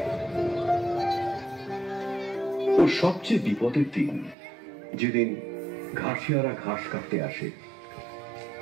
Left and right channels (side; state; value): left; drops out; at 4.4 s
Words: ওর সবচেয়ে বিপদের দিন যেদিন ঘাসিয়ারা ঘাস কাটতে আসে,